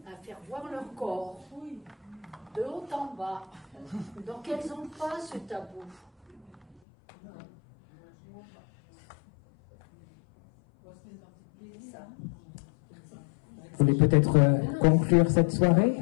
à faire voir leur corps, de haut en bas. Donc elles n'ont pas ce tabou. Ça. Vous voulez peut-être conclure cette soirée,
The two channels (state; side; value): drops out; right; at 6.8 s